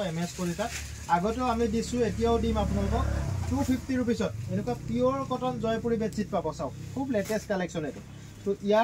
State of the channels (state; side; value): identical; both; correlation 1.00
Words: এমএস কলিতাত আগতেও আমি দিছো এতিয়াও দিম আপোনালোকক 250 रुपीसत এনেকুৱা পিওৰ কটন জয়পুৰী বেডशीट পাব সব খুব লেটেস্ট কালেকশন এটো তো